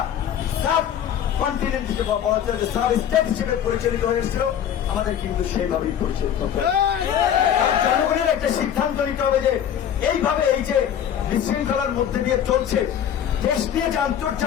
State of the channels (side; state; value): right; quieter; 9.5 dB